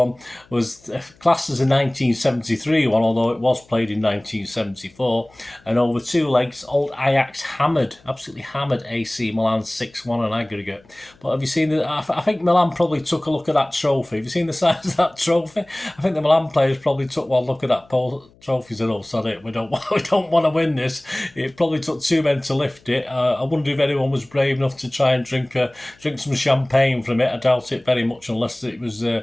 was classed as a 1973 one, although it was played in 1974, and over 2 legs, old Ajax absolutely hammered AC Milan 6-1 on aggregate. But have you seen I think Milan probably took a look at that trophy. Have you seen the size of that trophy? I think the Milan players probably took one look at that trophy and said, "Oh, sorry, we don't want to win this." It probably took 2 men to lift it. I wonder if anyone was brave enough to try and drink some champagne from it. I doubt it very much, unless it was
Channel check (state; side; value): noise; left; hum, 29 dB below the sound